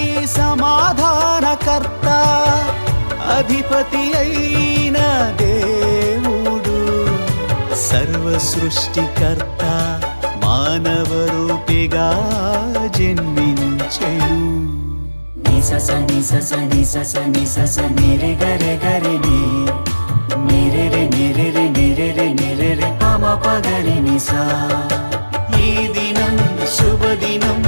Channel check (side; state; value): both; inverted; correlation -1.00